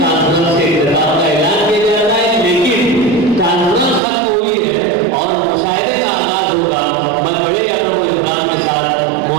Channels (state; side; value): drops out; left; at 4.0 s